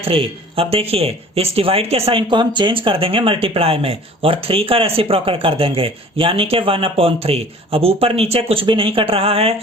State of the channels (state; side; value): normal; both; correlation 0.47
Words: अब देखिए इस डिवाइड के साइन को हम चेंज कर देंगे मल्टीप्लाई में और 3 का रेसिप्रोकल कर देंगे यानी कि 1/3। अब ऊपर नीचे कुछ भी नहीं कट रहा है,